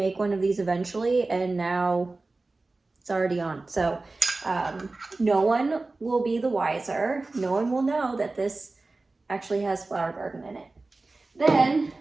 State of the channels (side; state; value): left; quieter; 3.4 dB